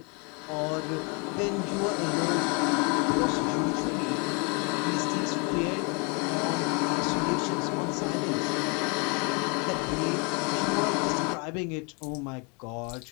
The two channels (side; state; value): right; quieter; 33.0 dB